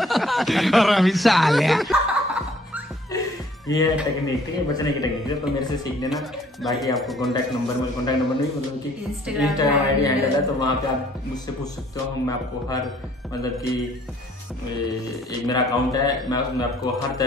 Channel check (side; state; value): both; normal; correlation 0.59